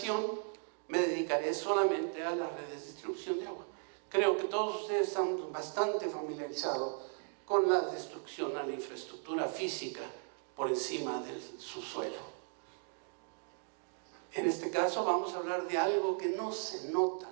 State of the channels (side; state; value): left; silent; 53 dB below the other